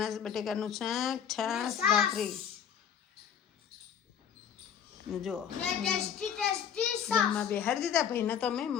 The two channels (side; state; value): right; quieter; 8.2 dB